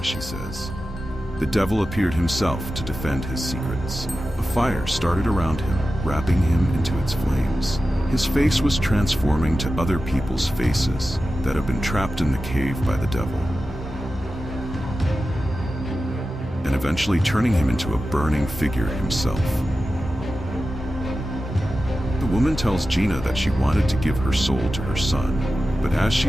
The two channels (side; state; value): both; normal; correlation 0.93